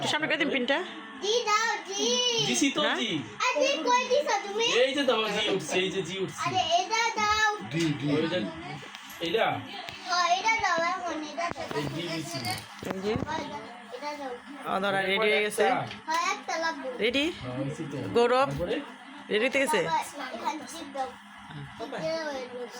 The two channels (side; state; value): both; identical; correlation 1.00